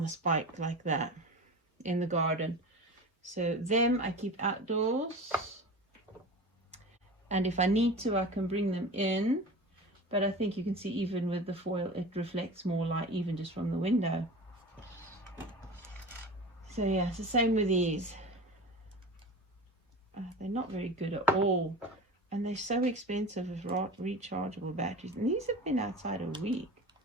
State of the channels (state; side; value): normal; both; correlation 0.32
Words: the spike like that in the garden. So them I keep outdoors. And if I need to, I can bring them in, but I think you can see even with the foil, it reflects more light even just from the window. So yeah, it's the same with these. They're not very good at all, and they're so expensive with rechargeable batteries, and these have been outside a week,